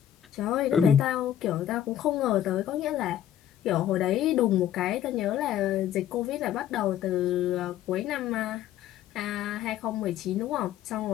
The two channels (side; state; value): right; quieter; 11.1 dB